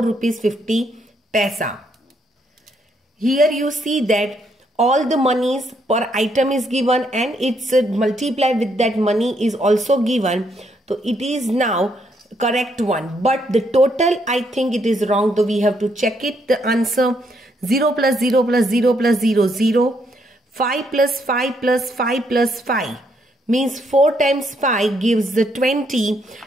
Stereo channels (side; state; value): both; normal; correlation 0.74